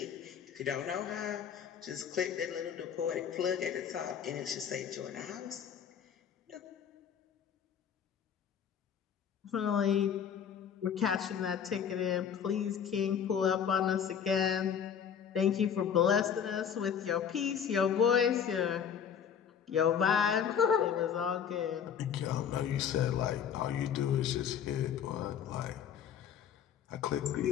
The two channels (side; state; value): right; quieter; 8.0 dB